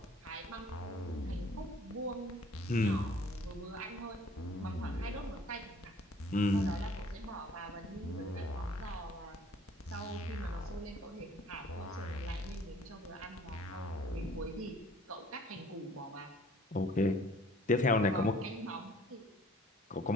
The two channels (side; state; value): both; normal; correlation 0.55